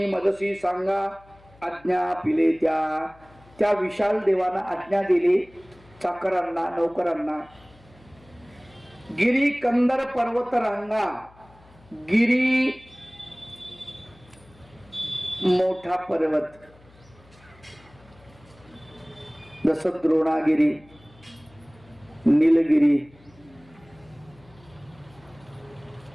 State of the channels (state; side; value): noise; left; hum, 27 dB below the sound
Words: मदसी सांगा आज्ञा पिले त्या. त्या विशाल देवाना आज्ञा दिली चाकरांना, नौकरांना. गिरी कंदर पर्वत रांगा. गिरी मोठा पर्वत, जसं द्रोणागिरी, नीलगिरी,